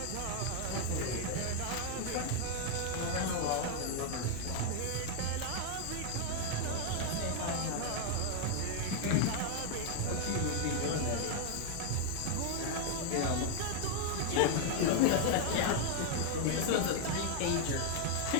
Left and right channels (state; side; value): different; both; correlation 0.01